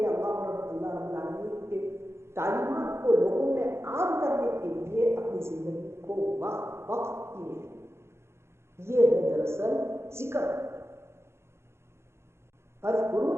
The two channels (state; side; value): late; left; 0.13 ms